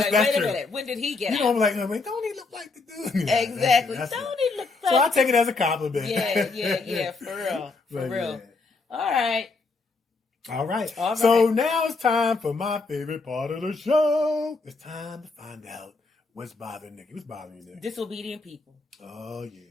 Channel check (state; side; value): quieter; right; 3.9 dB